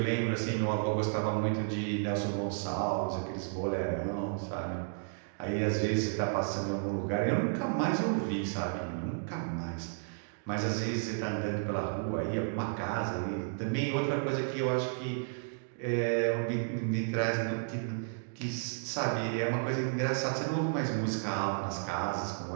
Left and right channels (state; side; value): silent; left; digital silence